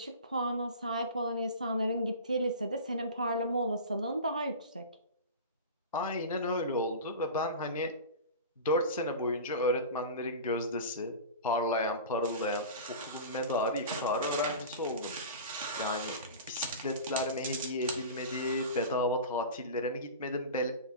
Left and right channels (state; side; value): inverted; both; correlation -0.32